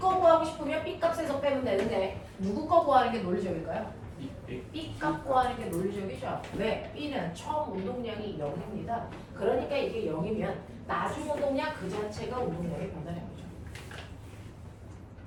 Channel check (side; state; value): both; identical; correlation 1.00